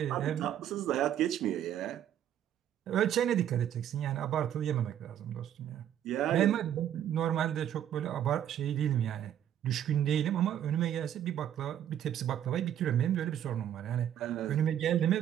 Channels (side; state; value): left; quieter; 10.5 dB